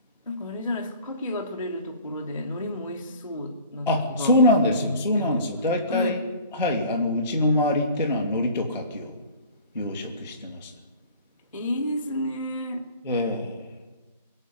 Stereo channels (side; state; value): both; inverted; correlation -0.45